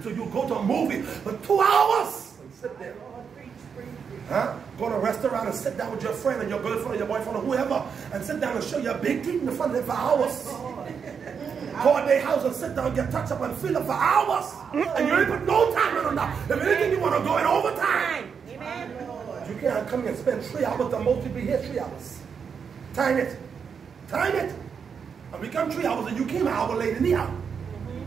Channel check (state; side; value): quieter; left; 6.5 dB